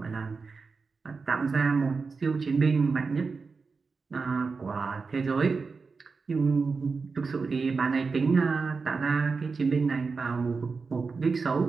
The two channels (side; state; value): left; quieter; 4.6 dB